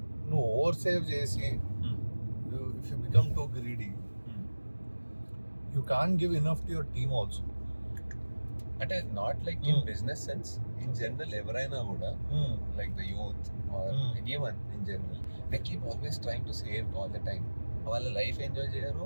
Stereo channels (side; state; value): both; inverted; correlation -1.00